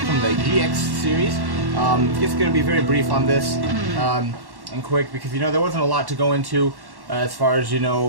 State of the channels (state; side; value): late; left; 1.1 ms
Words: the GX series. Just going to be very brief on this, and quick, because there wasn't a lot to go into as far as